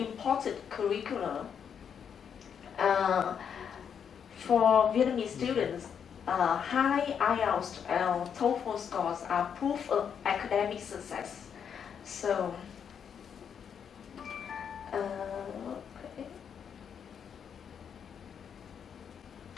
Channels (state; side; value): quieter; right; 7.6 dB